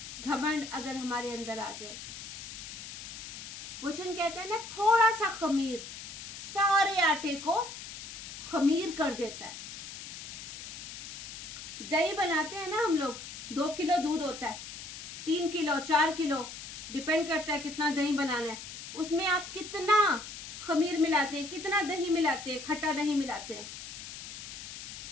घमंड अगर हमारे अंदर आ जाए, वचन कहता है ना, थोड़ा सा खमीर सारे आटे को खमीर कर देता है। दही बनाते हैं ना हम लोग, 2 किलो दूध होता है, 3 किलो 4 किलो डिपेंड करता है कितना दही बनाना है। उसमें आप कितना खमीर मिलाते हैं, कितना दही मिलाते हैं, खट्टा दही मिलाते हैं?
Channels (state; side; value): noise; left; hiss, 10 dB below the sound